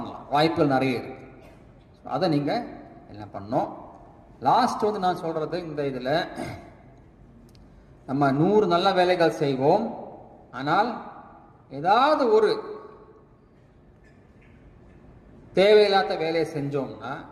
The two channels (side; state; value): both; identical; correlation 1.00